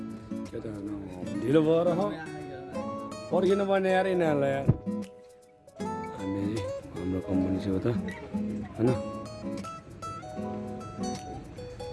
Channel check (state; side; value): identical; both; correlation 1.00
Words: केटाहरू ढिलो भएर पर्खिनु पर्ने यार यिनीहरूलाई यार हामी हाम्रो कम्पनी चाहिँ हो त होइन